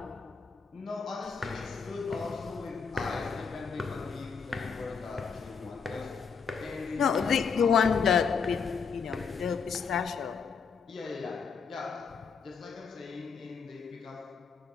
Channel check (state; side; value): quieter; right; 5.8 dB